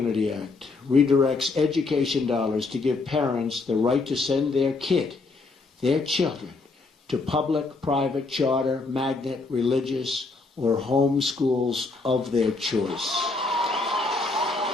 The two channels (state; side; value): quieter; right; 3.7 dB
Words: Act redirects education dollars to give parents the right to send their kid, their children, to public, private, charter, magnet, religious, or home schools of their choice.